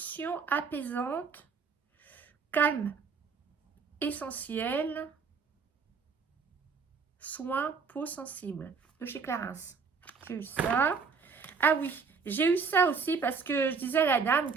apaisante. Calme. Essentiel. Soins peau sensible de chez Clarins. J'ai eu ça. Ah oui, j'ai eu ça aussi parce que je disais à la dame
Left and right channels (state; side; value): quieter; left; 5.4 dB